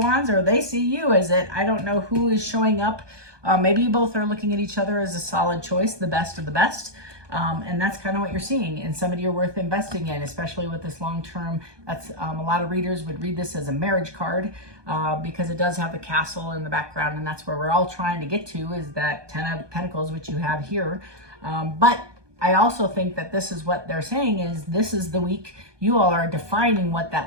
Wands, or they see you as it. I don't know who is showing up. Maybe you both are looking at each other as a solid choice, the best of the best. And that's kind of what you're seeing, and somebody you're worth investing in, especially with this long term. That's a lot of readers would read this as a marriage card because it does have the castle in the background, and that's where we're all trying to get to, is that 10 of Pentacles, which you have here. But I also think that this is what they're saying is this is the week you all are defining what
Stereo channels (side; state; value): left; late; 1.2 ms